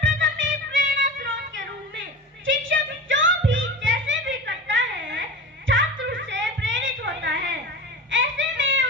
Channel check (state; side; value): normal; both; correlation 0.31